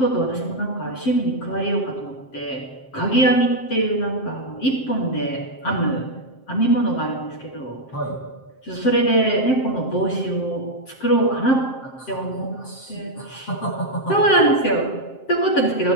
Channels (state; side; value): late; right; 7.6 ms